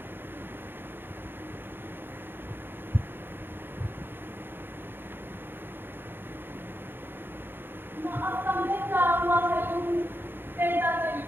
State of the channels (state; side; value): late; left; 0.10 ms